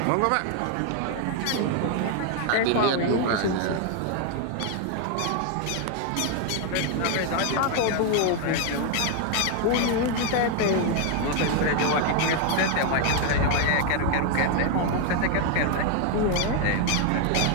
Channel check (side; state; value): both; different; correlation 0.01